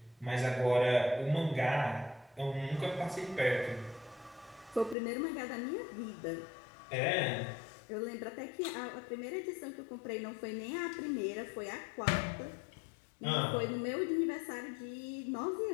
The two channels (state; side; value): drops out; right; at 5.0 s